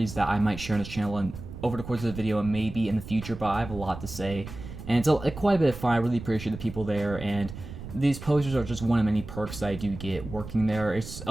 that I might share on this channel and over the course of the video and maybe in the future, but I have a lot to say. And it's quite a bit of fun. I really appreciate the people there, and these posters are just one of many perks that I do get working there. It's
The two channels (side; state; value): right; noise; rumble, 11 dB below the sound